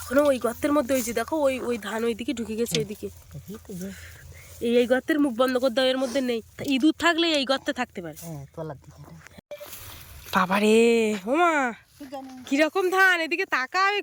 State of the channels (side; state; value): both; identical; correlation 1.00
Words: ওই গর্তের মধ্যে হয়েছে, দেখো ওই ওই ধান ওইদিকে ঢুকে গেছে। ওইদিকে এই গর্তের মুখ বন্ধ করে দাও, এর মধ্যে নেই। তা ইঁদুর থাকলে এই গর্তে থাকতে পারে। হ্যাঁ তলার দিকে। বাবারে, ওমা কিরকম ধান, এদিকে তাকাও